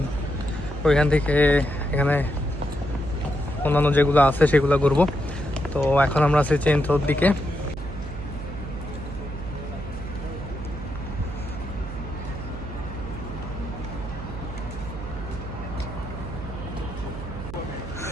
ওইখান থেকে এখানে অন্যান্য যেগুলো আছে সেগুলো ঘুরবো। তো এখন আমরা আছি চেন্ট্রোর দিকে।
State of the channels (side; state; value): right; noise; hum, 9 dB below the sound